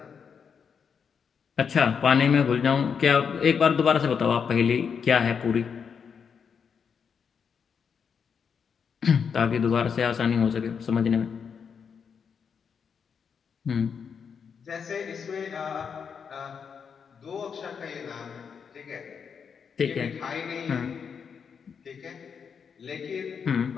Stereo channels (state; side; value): quieter; right; 6.6 dB